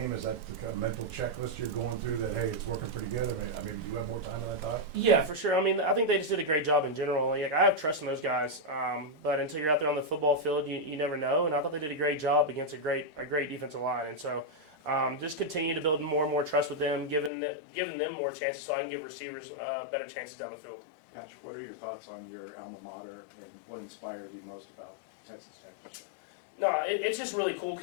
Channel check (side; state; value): right; drops out; at 17.3 s